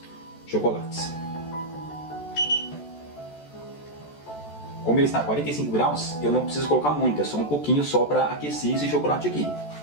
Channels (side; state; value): right; late; 14 ms